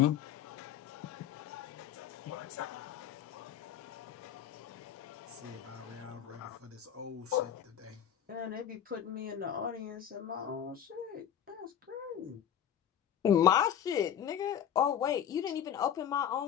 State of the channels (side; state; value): right; quieter; 9.4 dB